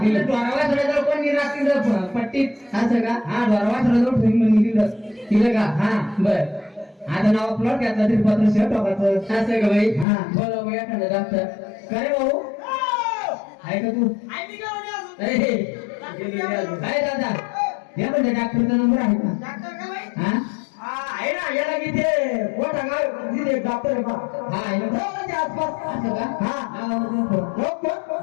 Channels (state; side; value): drops out; right; at 10.1 s